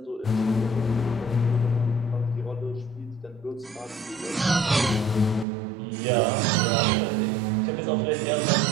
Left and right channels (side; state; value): left; drops out; at 5.5 s